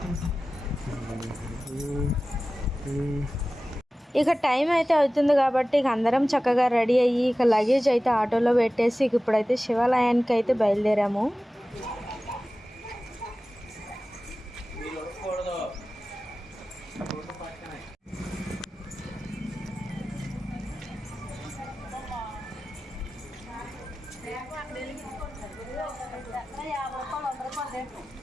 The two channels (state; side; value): normal; both; correlation 0.96